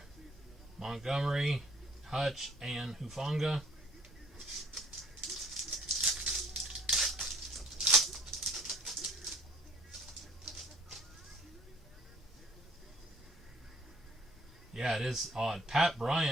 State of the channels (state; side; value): normal; both; correlation 0.58